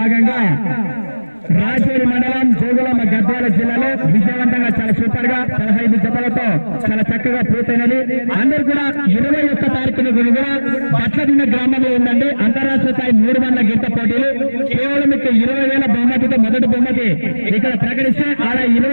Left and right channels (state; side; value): inverted; both; correlation -1.00